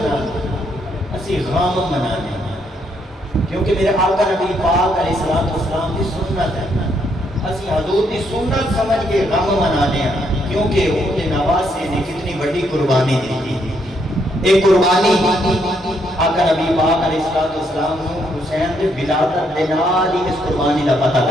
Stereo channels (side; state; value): both; normal; correlation 0.74